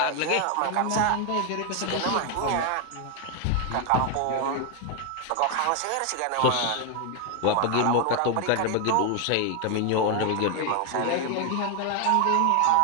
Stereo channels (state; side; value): different; both; correlation 0.01